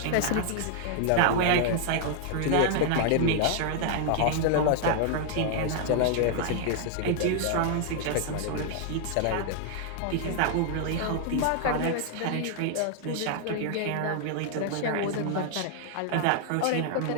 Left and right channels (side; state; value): both; different; correlation 0.00